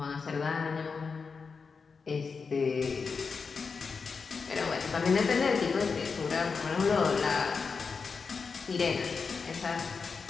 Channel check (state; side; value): quieter; right; 5.1 dB